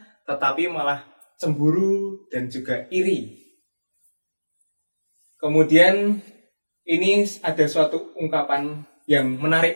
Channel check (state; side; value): inverted; both; correlation -1.00